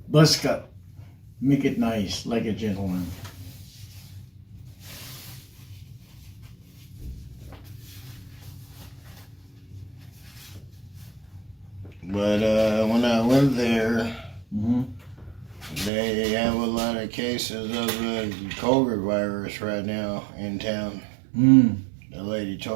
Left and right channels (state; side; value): drops out; left; at 15.9 s